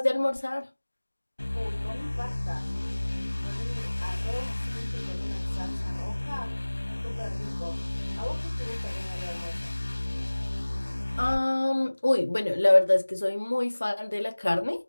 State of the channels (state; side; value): inverted; both; correlation -1.00